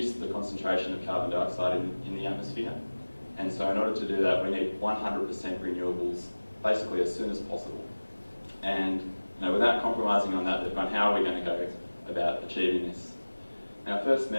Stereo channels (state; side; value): inverted; both; correlation -1.00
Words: the concentration of carbon dioxide in the atmosphere. And so in order to do that, we need 100% renewables basically as soon as possible. And without compromising on that, they've gone, how are we going to go about achieving this? Now, I first